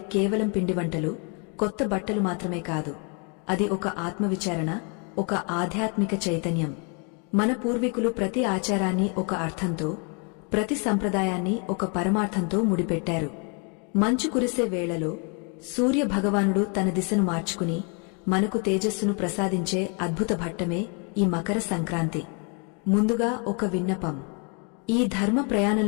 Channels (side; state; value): right; quieter; 36.3 dB